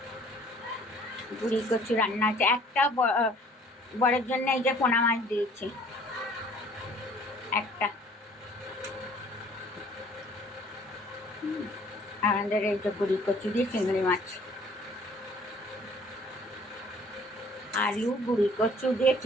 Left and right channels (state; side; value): normal; both; correlation 0.54